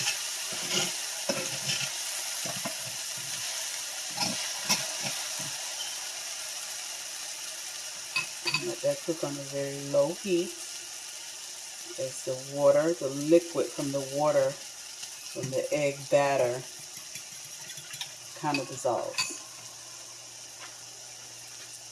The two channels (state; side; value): identical; both; correlation 1.00